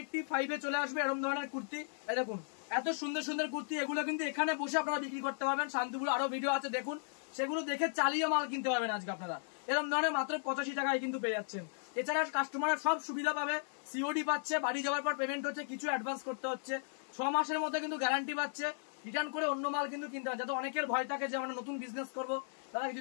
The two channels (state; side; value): silent; right; 54 dB below the other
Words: চলে আসবে এরকম ধরনের কুর্তি। দেখুন এত সুন্দর সুন্দর কুর্তি, এগুলো কিন্তু এখানে বসে আপনারা বিক্রি করতে পারবেন। শান্তিপুর আরো ভিডিও আছে দেখুন, সেগুলো দেখে চালিয়ে মাল কিনতে পারবেন আজকে আপনারা। এরকম ধরনের মাত্র 85 টাকায় কিন্তু পেয়ে যাচ্ছেন। এছাড়া কাস্টমার সব সুবিধা পাবে, সিওডি পাচ্ছে, বাড়ি যাওয়ার পর পেমেন্ট হচ্ছে, কিছু অ্যাডভান্স করতে হচ্ছে, 6 মাসের মধ্যে কিন্তু গ্যারান্টি পাচ্ছে। রিটার্ন করে অন্য মাল কিন্তু কিনতে হবে, যাতে অনেকের ভয় থাকে যে আমরা নতুন বিজনেস করবো, তারা